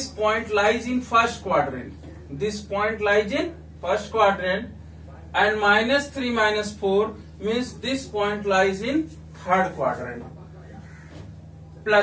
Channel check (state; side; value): identical; both; correlation 1.00